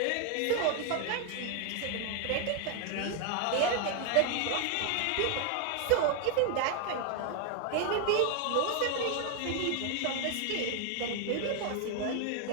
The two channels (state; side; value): different; both; correlation 0.00